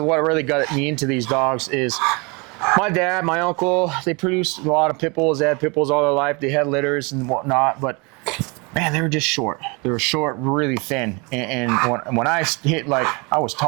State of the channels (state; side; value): quieter; left; 29.2 dB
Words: what really got me into these dogs is my dad, my uncle, they produced a lot of pit bulls. They had pit bulls all their life. They had litters and whatnot, but man, they were just short. They were short, really thin. And when I hit, like, I was